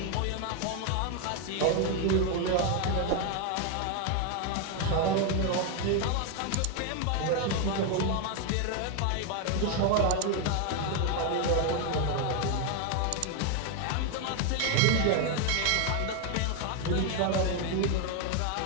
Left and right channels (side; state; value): both; different; correlation 0.01